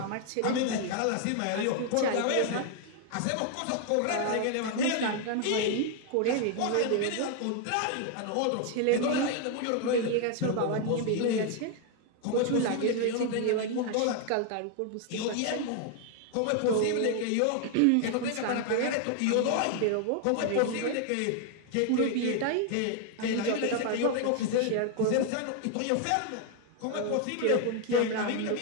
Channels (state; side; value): different; both; correlation 0.00